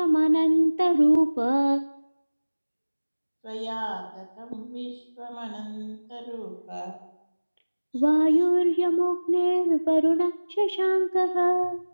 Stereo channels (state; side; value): inverted; both; correlation -1.00